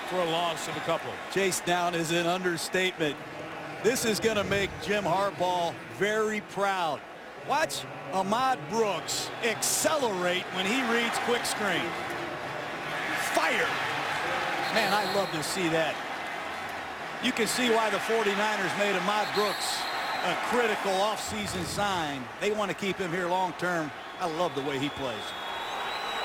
for a loss of a couple. Chased down is an understatement. This is going to make Jim Harbaugh very proud. Watch Ahmad Brooks accelerate when he reads quick screen. Fire. Man, I love to see that. You can see why the 49ers made Ahmad Brooks a critical offseason sign. They want to keep him here long term. I love the way he plays.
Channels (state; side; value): identical; both; correlation 1.00